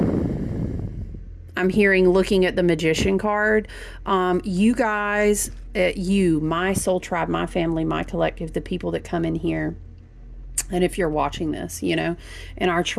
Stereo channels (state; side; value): identical; both; correlation 1.00